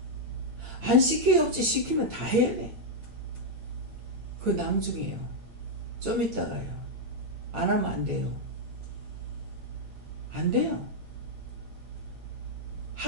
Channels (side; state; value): left; late; 8.9 ms